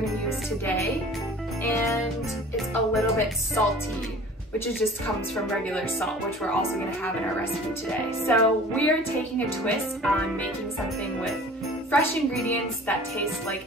use today. And it's a little bit salty, which just comes from regular salt, which we're also gonna have in our recipe today. So we're taking a twist on making something with fresh ingredients that taste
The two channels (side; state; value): both; normal; correlation 0.45